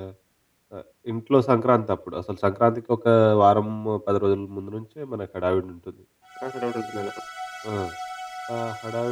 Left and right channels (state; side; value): identical; both; correlation 1.00